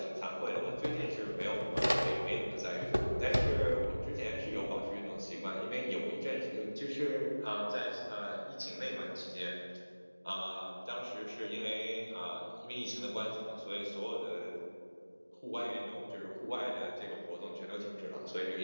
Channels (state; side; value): inverted; both; correlation -1.00